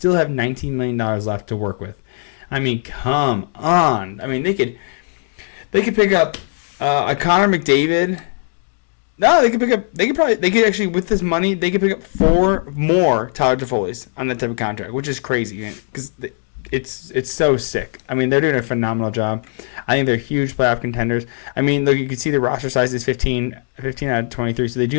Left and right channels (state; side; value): silent; right; 56 dB below the other